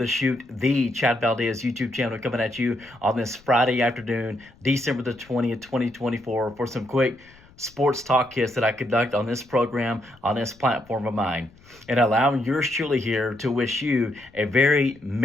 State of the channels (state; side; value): noise; left; rumble, 27 dB below the sound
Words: chute, the Chad Valdez YouTube channel coming at you on this Friday afternoon, December the 20th, 2024, for some quick sports talk hits that I conduct on this program, on this platform of mine. And allowing yours truly here to wish you a very